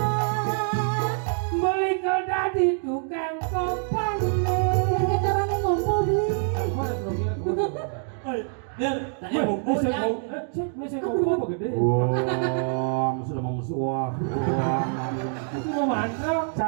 Beli kada di tukang kopang. Kayaknya caranya ngumpul beli. Tanya buku ya. Bisa ngomong apa gede? Wah, sudah mau musuh. Wah, Itu mau mantra.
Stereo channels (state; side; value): silent; left; 56 dB below the other